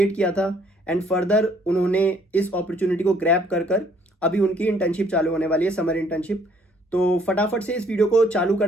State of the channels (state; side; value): normal; both; correlation 0.63